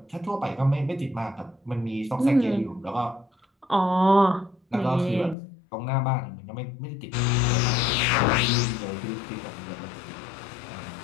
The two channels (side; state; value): right; drops out; at 5.4 s